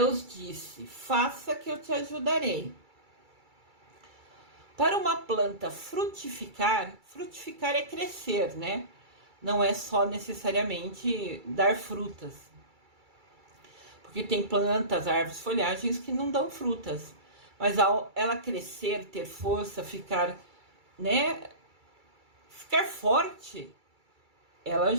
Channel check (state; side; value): late; left; 2.3 ms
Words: disse: faça que eu te ajudarei. Para uma planta frutificar, frutificar é crescer, né? Não é só necessariamente dar frutas. Porque tem plantas, árvores, folhagens que não dão frutas. Mas ao ela crescer, ter força, ficar, né? Ficar forte, ela